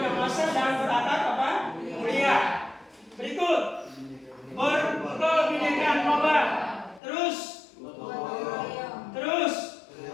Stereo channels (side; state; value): right; drops out; at 7.0 s